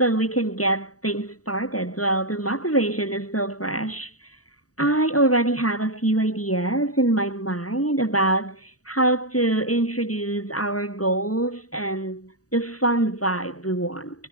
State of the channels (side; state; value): right; late; 0.66 ms